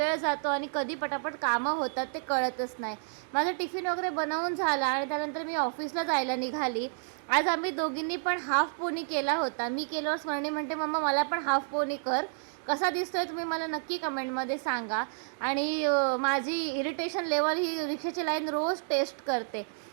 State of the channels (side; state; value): left; silent; digital silence